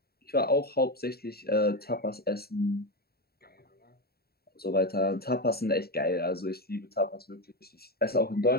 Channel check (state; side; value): late; right; 0.45 ms